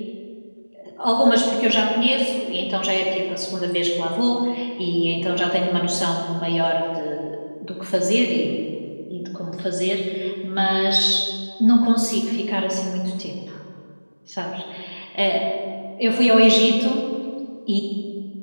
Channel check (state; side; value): inverted; both; correlation -1.00